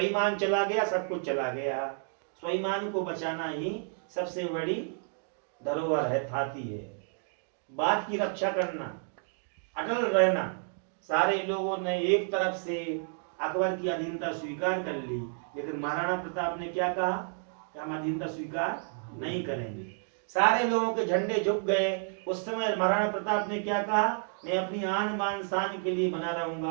चला गया सब कुछ चला गया। स्वाभिमान को बचाना ही सबसे बड़ी धरोहर है, थाती है। बात की रक्षा करना, अटल रहना। सारे लोगों ने एक तरफ से अकबर की अधीनता स्वीकार कर ली, लेकिन महाराणा प्रताप ने क्या कहा कि हम अधीनता स्वीकार नहीं करेंगे। सारे लोगों के झंडे झुक गए। उस समय महाराणा प्रताप ने क्या कहा, मैं अपनी आन बान शान के लिए बना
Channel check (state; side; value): silent; left; 57 dB below the other